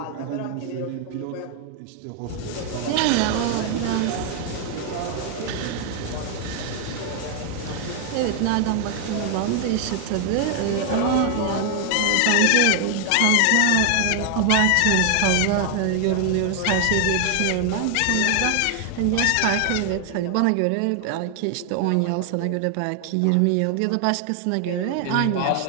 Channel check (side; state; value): both; different; correlation 0.00